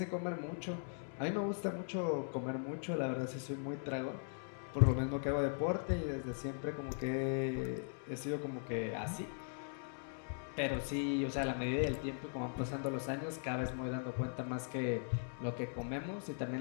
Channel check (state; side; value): silent; right; digital silence